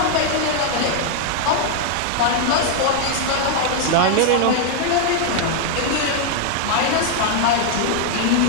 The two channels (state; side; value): different; both; correlation 0.00